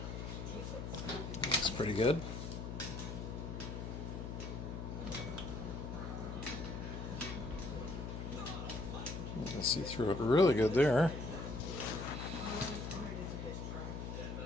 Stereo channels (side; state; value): left; noise; hum, 6 dB below the sound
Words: Looks pretty good. You can see through it really good there.